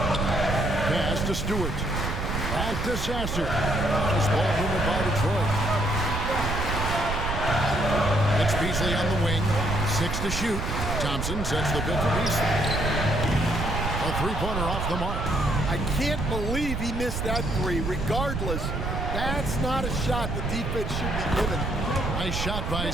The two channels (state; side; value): noise; right; rumble, 3 dB below the sound